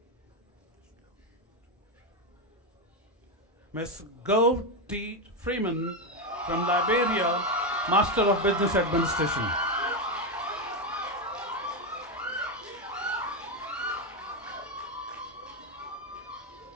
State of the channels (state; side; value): normal; both; correlation 0.09